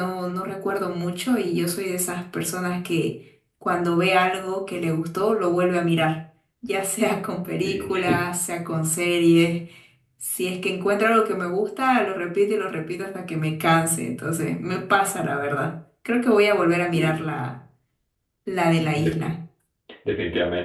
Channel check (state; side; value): identical; both; correlation 1.00